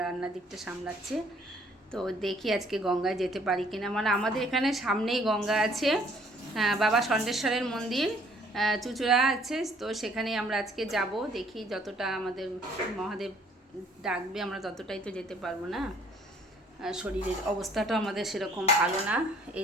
রান্নার দিকটা সামলাচ্ছে। তো দেখি আজকে গঙ্গায় যেতে পারি কিনা। মানে আমাদের এখানে সামনেই গঙ্গা আছে, বাবা ষণ্ঢেশ্বরের মন্দির চুচুড়া আছে, তো সেখানেই আমরা আজকে যাব। দেখি যতটা আমাদের মহাদেব ডাকবে আমরা ততটাই তো যেতে পারবো না, শরীরের অবস্থাটা আমাদের সেরকম ভালো না।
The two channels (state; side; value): normal; both; correlation 0.60